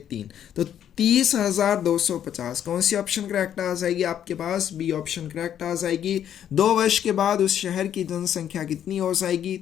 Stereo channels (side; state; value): right; quieter; 9.9 dB